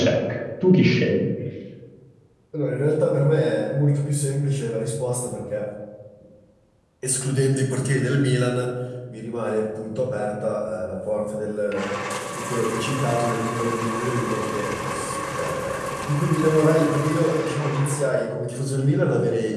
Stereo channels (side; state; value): both; identical; correlation 1.00